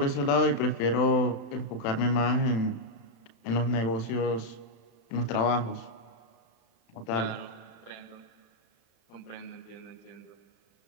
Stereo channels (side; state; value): right; late; 35 ms